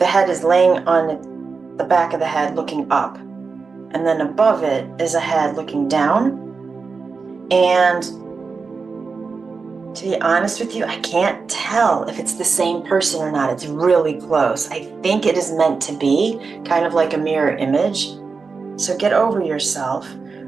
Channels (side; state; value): left; quieter; 4.7 dB